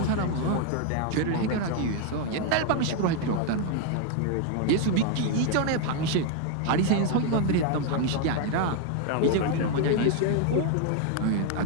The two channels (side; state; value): both; different; correlation 0.01